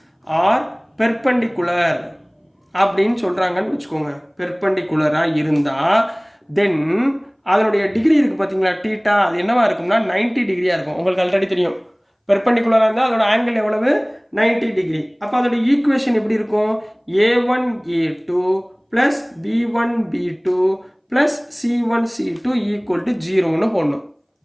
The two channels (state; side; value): identical; both; correlation 1.00